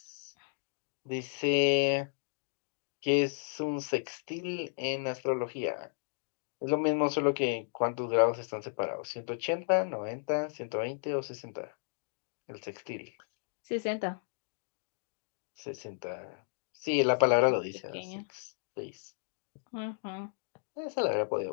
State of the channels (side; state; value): right; silent; digital silence